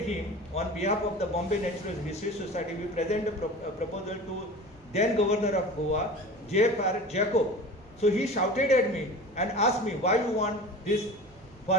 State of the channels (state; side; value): normal; both; correlation 0.36